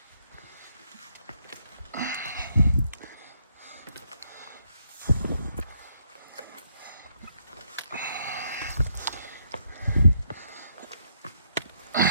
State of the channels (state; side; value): inverted; both; correlation -0.74